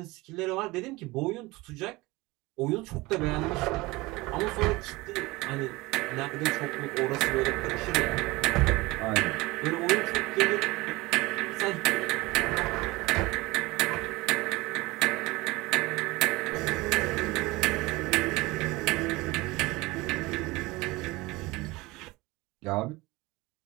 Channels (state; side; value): quieter; left; 21.7 dB